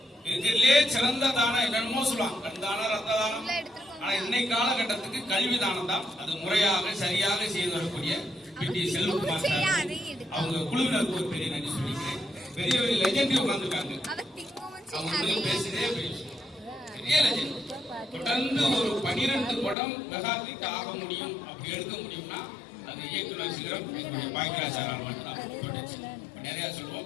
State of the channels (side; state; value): right; drops out; at 19.8 s